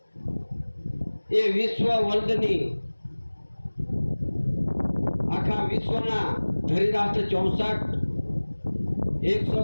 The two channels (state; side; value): inverted; both; correlation -1.00